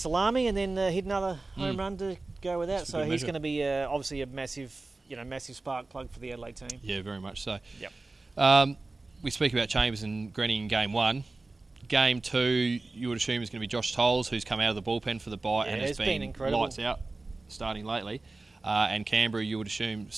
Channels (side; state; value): left; quieter; 3.3 dB